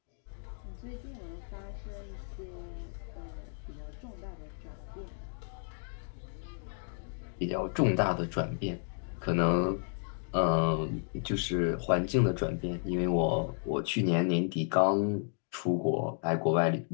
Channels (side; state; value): right; silent; 56 dB below the other